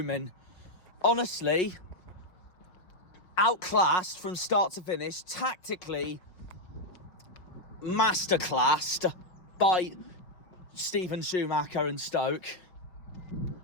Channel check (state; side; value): late; right; 5.7 ms